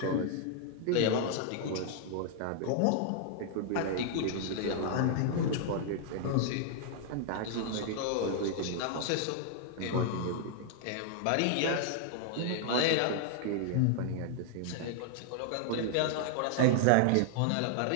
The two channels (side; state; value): both; different; correlation 0.00